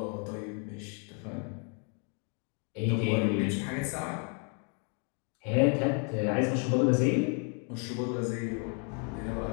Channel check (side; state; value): right; quieter; 38.7 dB